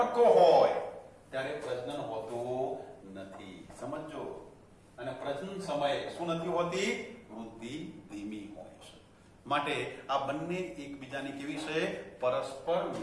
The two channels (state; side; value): identical; both; correlation 1.00